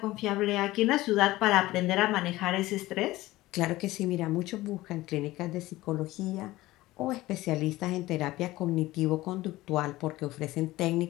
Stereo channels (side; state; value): right; quieter; 17.8 dB